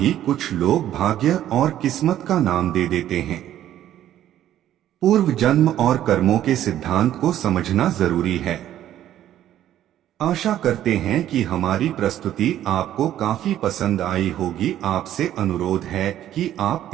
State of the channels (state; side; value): quieter; left; 12.0 dB